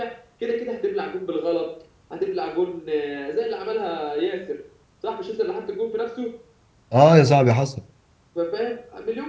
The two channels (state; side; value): identical; both; correlation 1.00